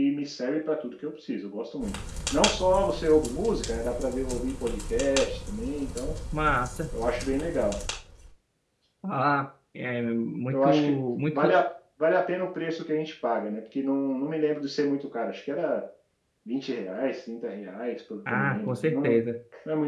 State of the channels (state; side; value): identical; both; correlation 1.00